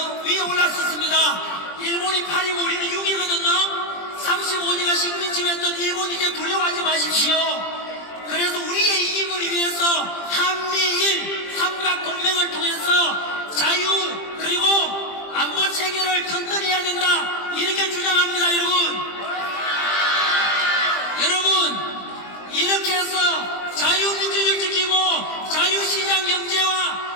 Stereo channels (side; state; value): right; late; 20 ms